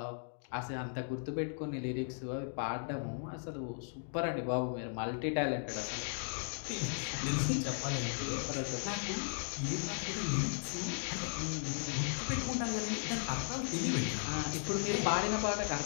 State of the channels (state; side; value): silent; right; digital silence